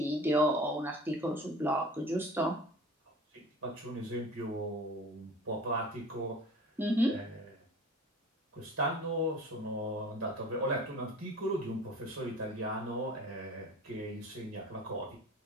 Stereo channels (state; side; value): normal; both; correlation 0.41